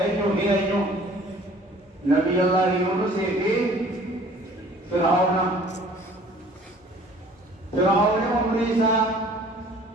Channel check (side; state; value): both; normal; correlation 0.52